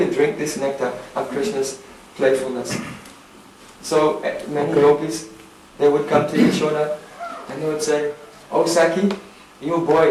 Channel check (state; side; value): identical; both; correlation 1.00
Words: drink this nectar of Krishna's playfulness. So many gopis, they would come to Yashoda and they would say, "Oh Sakhi, your